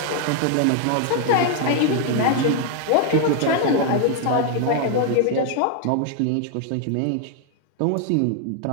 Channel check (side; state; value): both; different; correlation 0.00